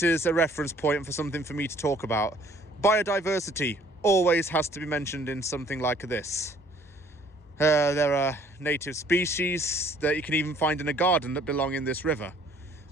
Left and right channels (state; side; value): normal; both; correlation 0.58